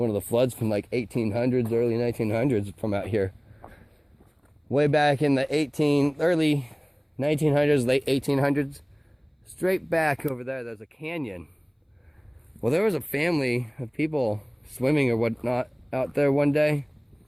of the floods from like 1800s, early 1900s from out here. Way back in the early 1900s, late 1800s. Straight back over there, there's a canyon. Well, there was a family of people swimming or whatnot out there one day.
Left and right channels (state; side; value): identical; both; correlation 1.00